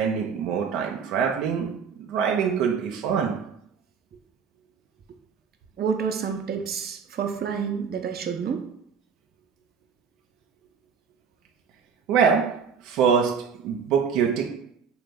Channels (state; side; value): quieter; left; 6.4 dB